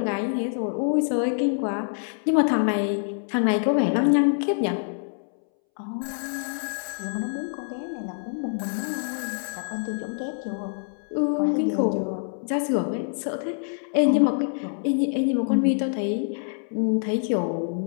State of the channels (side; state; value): right; silent; 61 dB below the other